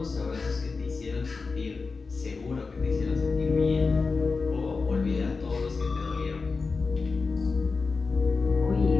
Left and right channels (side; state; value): right; quieter; 4.3 dB